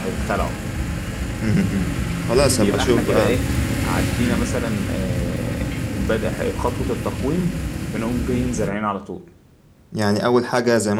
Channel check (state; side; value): identical; both; correlation 1.00